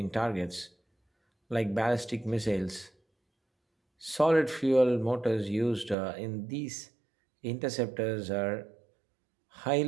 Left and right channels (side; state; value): left; drops out; at 6.0 s